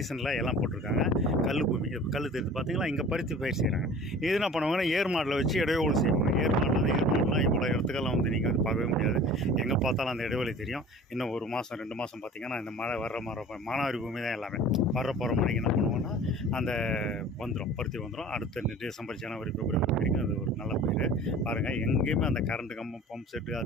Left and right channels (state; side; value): normal; both; correlation 0.43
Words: எல்லாம் போட்டிருக்காங்க. கல் பூமி கல் தெரிஞ்சு பார்த்தீங்களா, இங்கே பருத்தி பயிர் செய்கிறாங்க. இது என்ன பண்ணுவாங்கன்னா ஏர் மாடில் வச்சு இடைவெளி செய்வாங்க. ஏர் மாடெலாம் இவ்வளோ இடத்துக்கெல்லாம் வந்து நீங்கள் வந்து பார்க்கவே முடியாது. எங்கே பார்த்தாலும் அந்த இடைவெளி தெரியும். இன்னும் 1 மாதம் 2 மாதம் பார்த்தீங்கன்னா இந்த மழை வர்ற மாதிரி மானாவாரி பூமி தான் எல்லாமே. போகிற மணிக்கு என்ன பண்ணுவோன்னா அந்த பருத்தி வந்துடும். அடுத்த டிசம்பர் ஜனவரி பிப்ரவரி வரைக்கும் அது ஒரு நல்ல பயிர். பாருங்கள் எங்கேயுமே அந்த கரண்ட் கம்பம் பம்ப் செட்டு